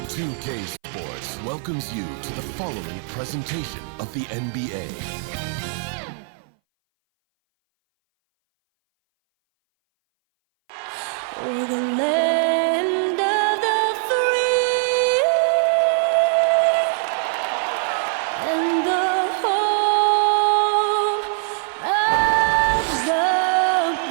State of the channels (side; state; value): left; silent; 60 dB below the other